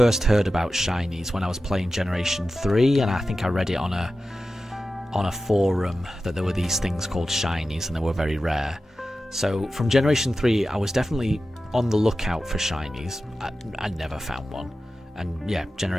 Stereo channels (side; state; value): both; normal; correlation 0.93